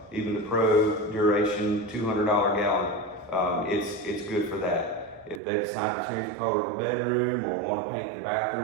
even the Pro Duration $200 gallon. It's good for that. If they decide to change the color of a bedroom or want to paint the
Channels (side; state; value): left; drops out; at 5.4 s